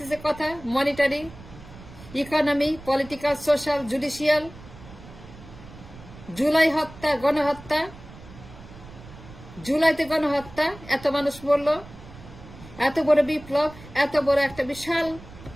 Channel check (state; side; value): noise; right; rumble, 18 dB below the sound